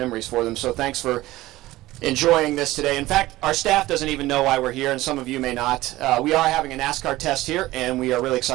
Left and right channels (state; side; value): quieter; left; 17.3 dB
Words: for them. So thanks for enjoying this today. In fact, our staff doesn't even know why we're here, and some of you may not. We are having a NASCAR test here, and we are really